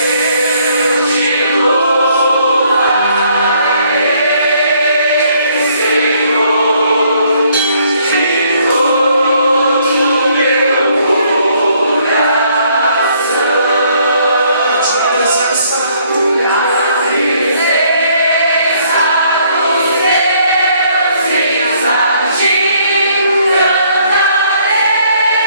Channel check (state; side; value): inverted; both; correlation -0.65